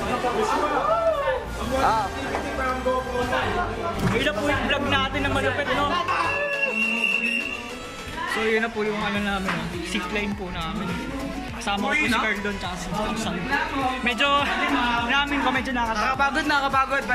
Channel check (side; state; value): both; identical; correlation 1.00